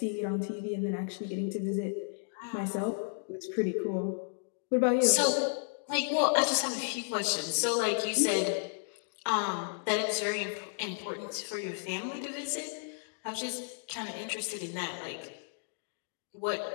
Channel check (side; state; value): right; silent; digital silence